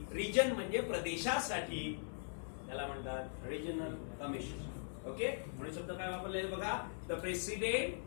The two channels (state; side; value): silent; right; 50 dB below the other